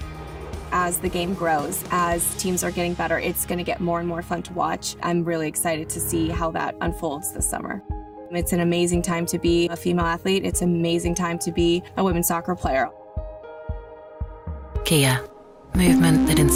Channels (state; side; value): identical; both; correlation 1.00